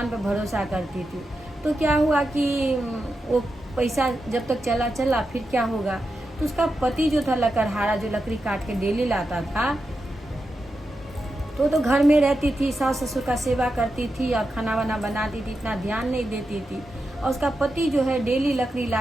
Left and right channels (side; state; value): both; normal; correlation 0.88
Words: पे भरोसा करती थी। तो क्या हुआ कि वो पैसा जब तक चला फिर क्या होगा, तो उसका पति जो था लकड़हारा, जो लकड़ी काट के डेली लाता था, तो घर में रहती थी, सास ससुर का सेवा करती थी और खाना वाना बनाती थी, इतना ध्यान नहीं देती थी। और उसका पति जो है डेली लकड़ी